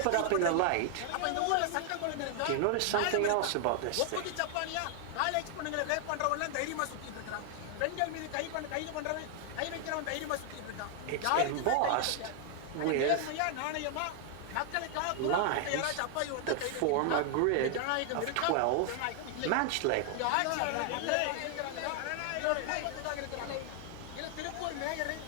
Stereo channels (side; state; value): both; different; correlation 0.00